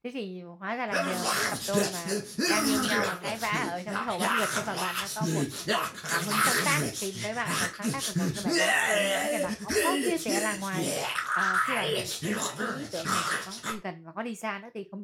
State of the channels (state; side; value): identical; both; correlation 1.00